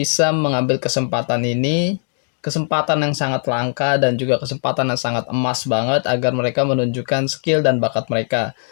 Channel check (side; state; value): right; silent; digital silence